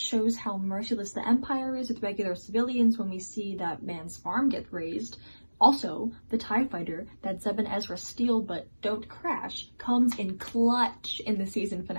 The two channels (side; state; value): both; inverted; correlation -1.00